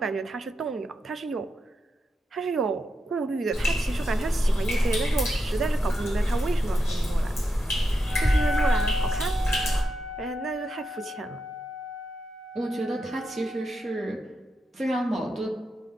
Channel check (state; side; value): normal; both; correlation 0.86